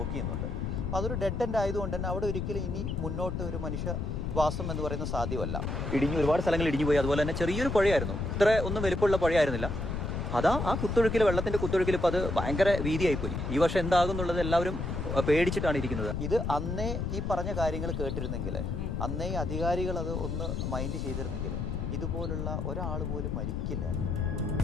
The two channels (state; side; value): noise; left; rumble, 3 dB below the sound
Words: ചെയ്യുന്നുണ്ട്. അപ്പോൾ അതൊരു ഡെഡ് എൻഡ് ആയതുകൊണ്ട് തന്നെ അവിടെ ഒരിക്കലും ഇനി മുന്നോട്ട് ഒരു മനുഷ്യവാസം എന്ന് പറയുന്നത് സാധ്യമല്ല. ഇടിഞ്ഞു, ഒരുപാട് സ്ഥലങ്ങൾ ഇടിഞ്ഞു പോയി. അതുപോലെ തന്നെ ചെറിയൊരു പുഴയായിരുന്നു, ഇത്ര ഒന്നും വലിപ്പമുള്ള പുഴയായിരുന്നില്ല. അതാ ആ കുത്തൊഴുക്കിൽ, വെള്ളത്തിൻ്റെ കുത്തൊഴുക്കിൽ ഇപ്പോൾ അത് ഭയങ്കര വീതിയായിപ്പോയി. ഈ വർഷം എന്താകുന്നുള്ളത് എല്ലാവരും പേടിച്ചിട്ടാണ് ഇരിക്കുന്നത്. ഇത് അന്നേ ഈ പറഞ്ഞ കാര്യങ്ങൾ കേട്ടിരുന്നെങ്കിൽ, അന്നേ അധികാരികൾ അത് ഒന്ന് മൈൻഡ് ചെയ്തിരുന്നെങ്കിൽ ഇതുപോലുള്ള ഒരാൾ പോലും മരിക്കില്ലായിരുന്നു.